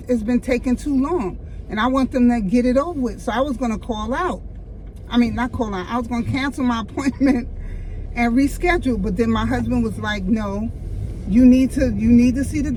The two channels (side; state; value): both; identical; correlation 1.00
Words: taking too long, and I want them to get it over with. So I was gonna call out. I mean, not call out. I was gonna cancel my appointment and reschedule, but then my husband was like, no, you need to see the